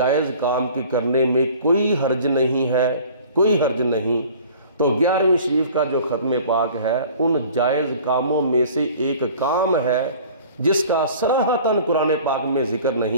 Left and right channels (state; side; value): inverted; both; correlation -0.47